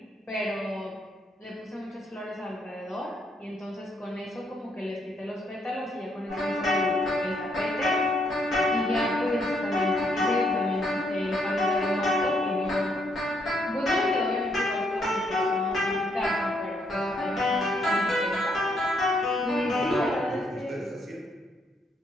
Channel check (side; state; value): both; normal; correlation 0.73